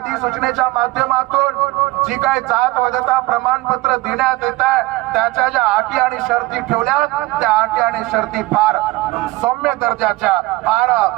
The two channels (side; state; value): left; quieter; 20.5 dB